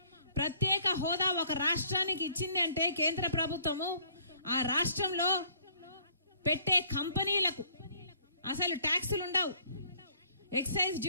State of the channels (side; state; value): both; inverted; correlation -0.60